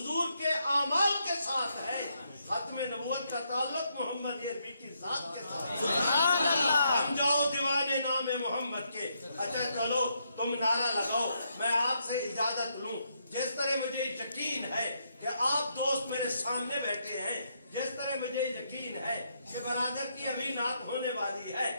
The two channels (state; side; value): inverted; both; correlation -0.77